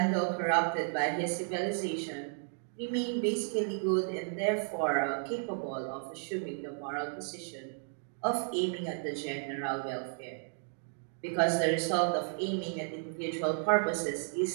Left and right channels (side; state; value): left; silent; 56 dB below the other